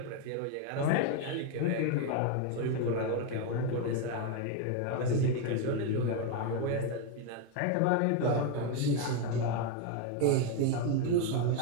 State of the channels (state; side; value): different; both; correlation 0.02